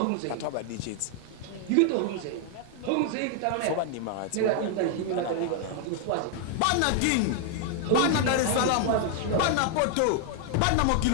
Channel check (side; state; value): both; different; correlation 0.00